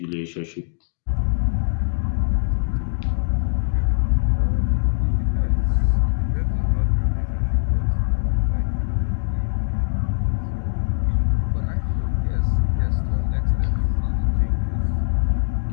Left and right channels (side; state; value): right; silent; digital silence